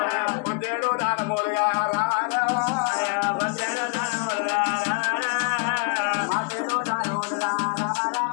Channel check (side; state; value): right; quieter; 35.1 dB